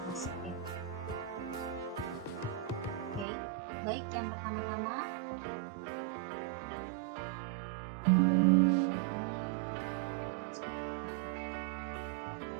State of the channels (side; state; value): left; drops out; at 3.2 s